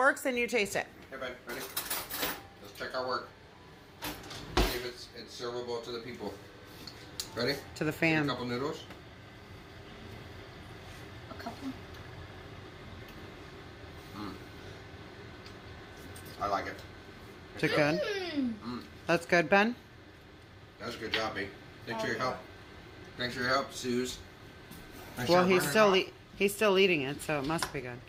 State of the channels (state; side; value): identical; both; correlation 1.00